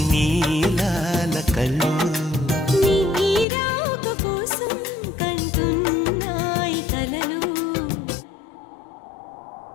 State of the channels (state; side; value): drops out; right; at 3.5 s